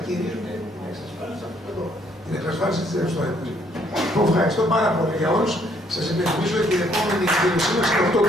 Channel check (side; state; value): both; normal; correlation 0.67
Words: κυρίως με την εξασφάλιση αυτού εδώ. Την εξασφάλιση της ρευστότητας. Ευχαριστώ πάρα πολύ για όλους. Σας υπενθυμίζω ότι η επόμενη εκδήλωσή μας είναι 8